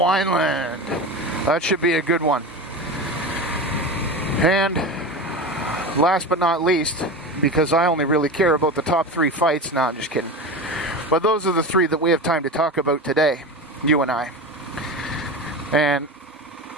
That should be a good one. And last but not least, because I only really care about the top three fights. No, I'm just kidding. But those are the three that we have time to talk about today, you and I. And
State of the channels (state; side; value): normal; both; correlation 0.26